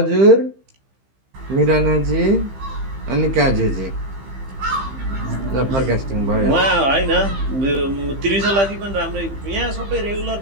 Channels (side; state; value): left; late; 15 ms